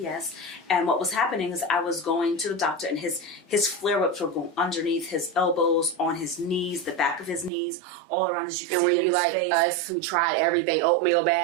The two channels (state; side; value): drops out; left; at 7.5 s